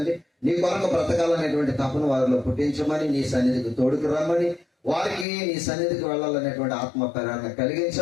నీ కొరకు బ్రతకాలనేటువంటి తపను వారిలో పుట్టించమని, నీ సన్నిధికి తోడుకు రమ్మని, వారికి నీ సన్నిధికి వెళ్ళాలనేటువంటి ఆత్మ ప్రేరణ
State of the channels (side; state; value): right; drops out; at 5.2 s